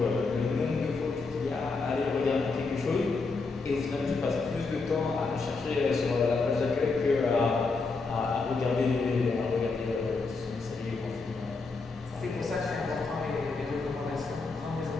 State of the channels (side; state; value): right; quieter; 4.1 dB